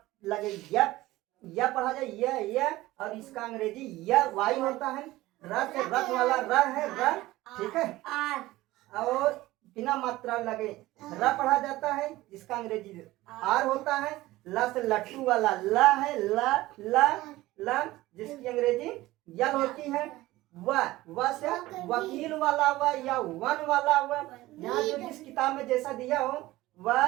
लगे यह पढ़ा जाए, यह, और इसका अंग्रेजी यह वाई होता है। रथ, रथ वाला र है, र, ठीक है, और बिना मात्रा लगे र पढ़ा जाता है, इसका अंग्रेजी आर होता है। ल से लट्टू वाला ल है, ल, जिसकी अंग्रेजी यल होती है। व से वकील वाला व या वन वाला व, यहाँ जो जिस किताब में जैसा दिया हो वह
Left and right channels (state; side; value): quieter; left; 17.7 dB